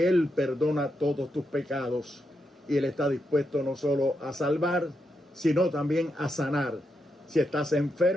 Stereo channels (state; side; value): normal; both; correlation 0.83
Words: Él perdona todos tus pecados y Él está dispuesto no solo a salvar, sino también a sanar. Si estás